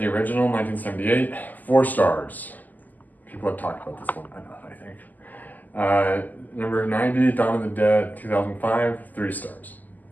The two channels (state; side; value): late; right; 0.083 ms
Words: original, 1978, 4 stars. People have talked about this one enough, I think. Number 90, Dawn of the Dead, 2005, 3 stars.